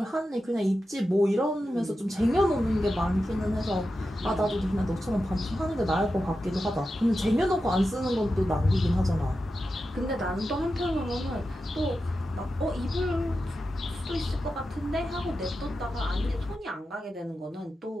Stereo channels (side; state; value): both; normal; correlation 0.91